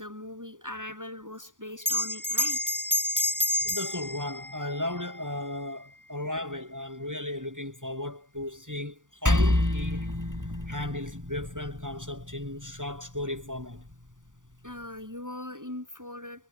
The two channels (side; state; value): left; late; 0.88 ms